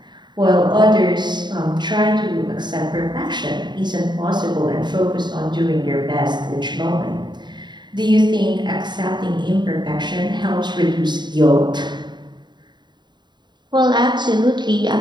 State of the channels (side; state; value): left; late; 0.21 ms